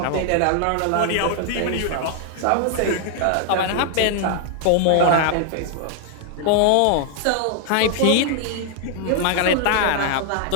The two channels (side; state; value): both; different; correlation 0.00